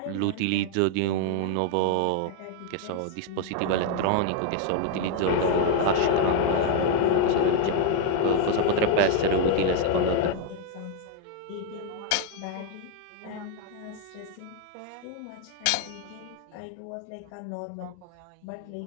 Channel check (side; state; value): both; different; correlation 0.00